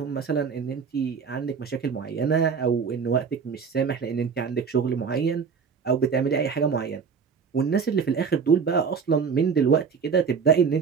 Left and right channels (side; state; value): left; quieter; 6.0 dB